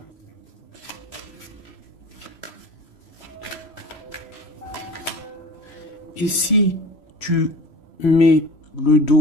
Et si tu mets le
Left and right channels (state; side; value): late; right; 3.1 ms